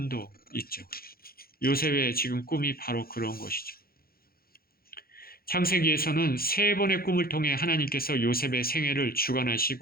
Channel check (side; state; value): right; late; 0.44 ms